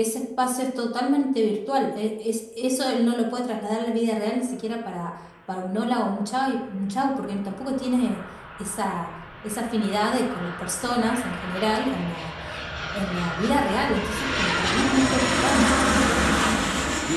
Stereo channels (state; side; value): identical; both; correlation 1.00